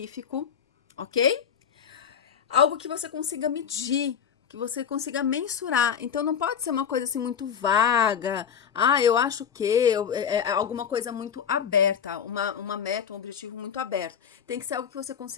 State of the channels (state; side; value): quieter; right; 7.8 dB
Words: ok? Algo que você consiga medir, que você consiga mensurar. Então não pode ser uma coisa assim muito vaga. Eu acho que é alguma coisa muito aberta, uma meta, um objetivo muito aberto. Tem que ser algo que você